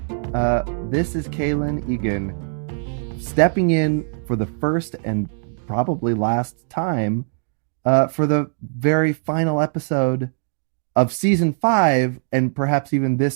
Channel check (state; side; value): silent; left; 65 dB below the other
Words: This is Kalen Egan stepping in for the first and probably last time for the very final episode of season 5 and perhaps even